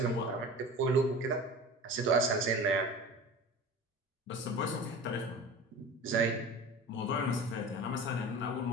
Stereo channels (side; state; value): both; normal; correlation 0.36